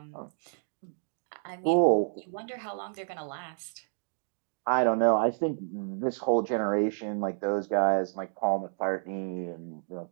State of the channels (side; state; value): left; silent; digital silence